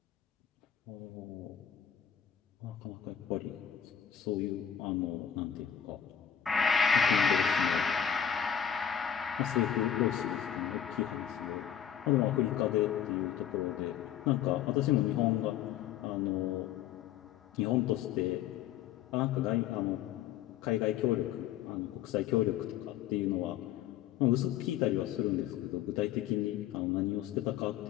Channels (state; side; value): quieter; right; 9.3 dB